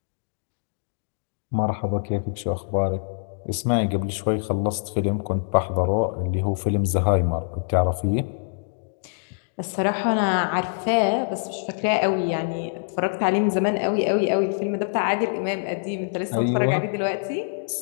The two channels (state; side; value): silent; right; digital silence